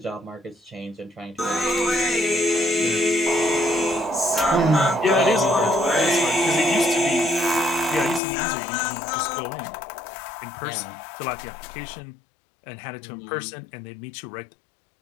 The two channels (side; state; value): right; drops out; at 8.2 s